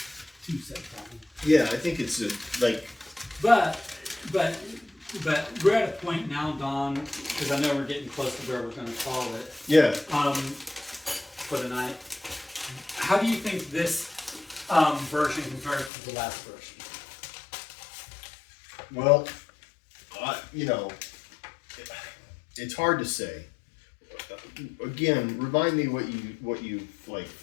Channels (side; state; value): right; drops out; at 15.9 s